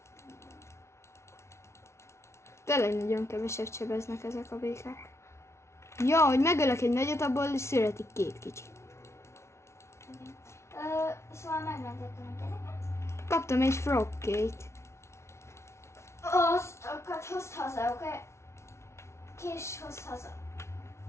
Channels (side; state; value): right; late; 0.13 ms